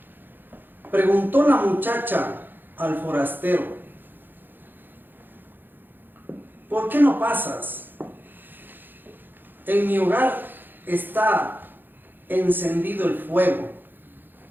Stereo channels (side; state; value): left; late; 0.093 ms